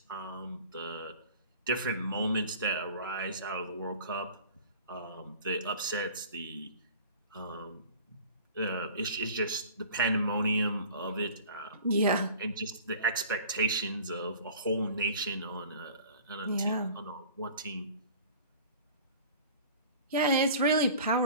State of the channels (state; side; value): inverted; both; correlation -0.43